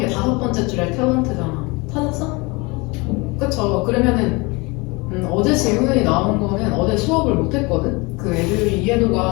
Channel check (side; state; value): right; quieter; 26.2 dB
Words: 5번째 줄에 탤런트잖아. 찾았어? 그쵸? 그러면은 어제 질문이 나온 거는 어제 수업을 못했거든? 그 애들이